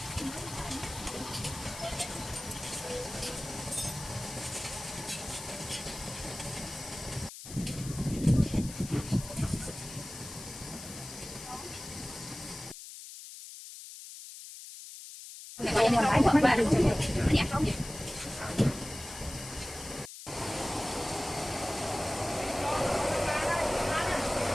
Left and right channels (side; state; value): left; noise; hiss, 12 dB below the sound